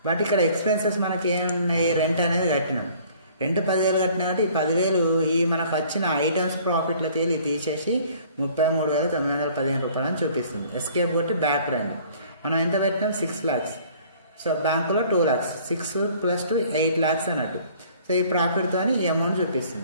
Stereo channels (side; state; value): both; inverted; correlation -0.54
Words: బట్ ఇక్కడ ఎక్స్పెన్సెస్ మనకి ఏమున్నాయి, రెంట్ అనేది కట్టినాం. రెంట్ 10,000 కట్టినా కాబట్టి ఈ 10,000 ఈ మనకు వచ్చిన ఐటమ్స్ ప్రాఫిట్లో తీసేసి 33,915 రూపాయలు అని చూపిస్తుంది. ఎస్కేప్ కొట్టి బ్యాక్ రండి. మనం ఎంత పెట్టినాం 6 lakhs. సో బ్యాంకులో 2 lakhs, 6 + 2 8 lakhs అన్నట్టు. సో ఈ ప్రాఫిట్తో ఈ అమౌంట్